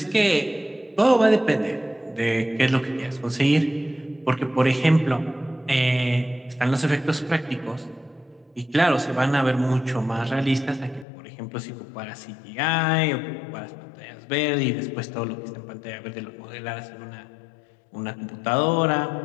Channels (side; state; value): right; drops out; at 11.1 s